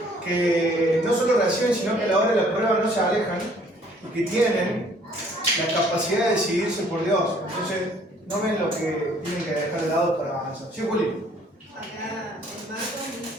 Que no solo reciben, sino que a la hora de la prueba no se alejan, y que tienen la capacidad de decidirse por Dios. Entonces, no ven lo que tienen que dejar de lado para avanzar. ¿Sí, Juli? Acá en Marcos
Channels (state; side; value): normal; both; correlation 0.59